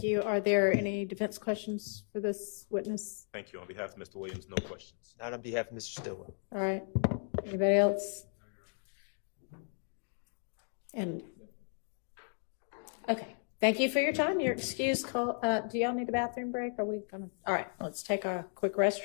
you. Are there any defense questions for this witness? Thank you. On behalf of Mr. Williams, no questions. Not on behalf of Mr. Stillwell. All right. Anybody else? And okay. Thank you for your time. You're excused. Do y'all need a bathroom break? Are we gonna? All right. Let's take a quick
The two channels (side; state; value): right; silent; 54 dB below the other